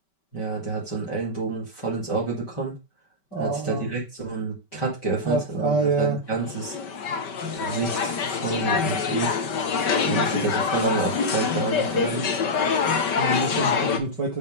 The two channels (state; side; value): late; right; 5.2 ms